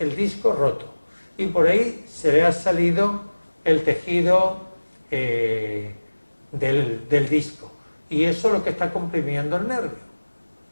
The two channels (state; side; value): inverted; both; correlation -1.00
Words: disco roto. Y por ahí se le ha salido el tejido del disco. Y eso es lo que está comprimiendo el nervio.